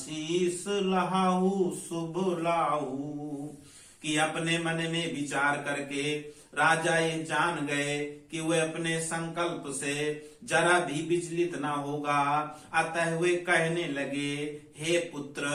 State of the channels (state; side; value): identical; both; correlation 1.00